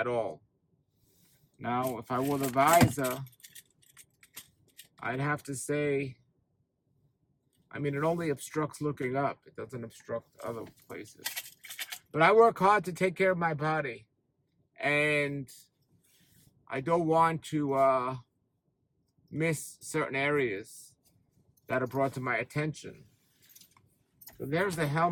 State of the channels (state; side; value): identical; both; correlation 1.00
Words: all. Now, if I wore the visor, I'd have to say, I mean, it only obstructs looking up. It doesn't obstruct other places. But I work hard to take care of my body. And I don't want to miss certain areas that are brought to my attention. So there's the